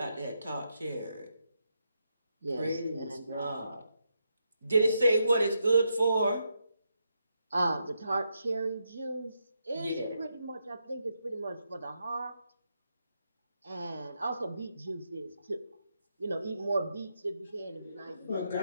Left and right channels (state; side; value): inverted; both; correlation -0.82